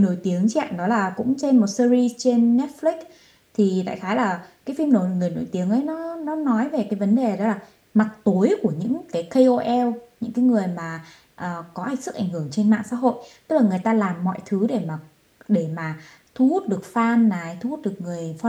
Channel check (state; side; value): identical; both; correlation 1.00